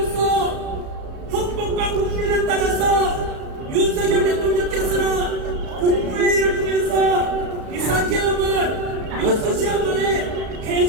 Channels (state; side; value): late; left; 34 ms